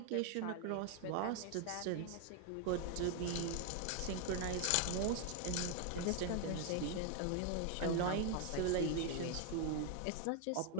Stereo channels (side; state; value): both; different; correlation 0.00